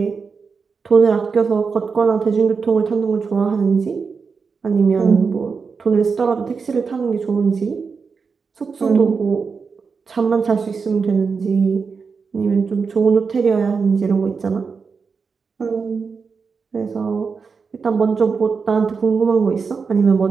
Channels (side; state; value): left; quieter; 5.2 dB